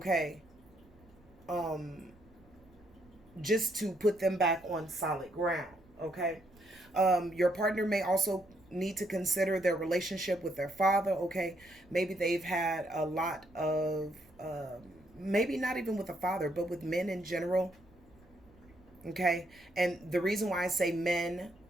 Just to put them back on solid ground, okay? Your partner may also need to consider their relationship with their father, okay? Maybe they've had a lot of, maybe not even with the father, but with men in general, okay? And the reason why I say men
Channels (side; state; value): right; noise; rumble, 27 dB below the sound